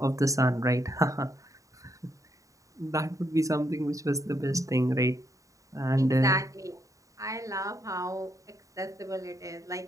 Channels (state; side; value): late; left; 0.16 ms